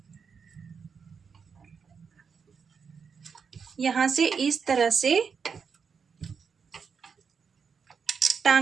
यहाँ से इस तरह से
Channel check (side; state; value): left; quieter; 6.1 dB